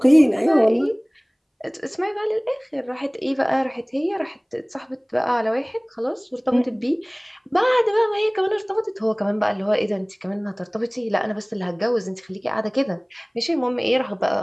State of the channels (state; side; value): identical; both; correlation 1.00